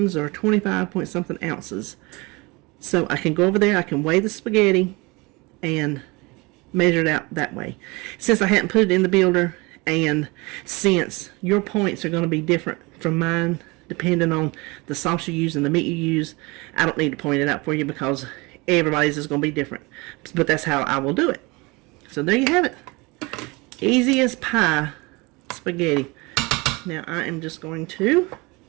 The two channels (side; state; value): left; quieter; 25.4 dB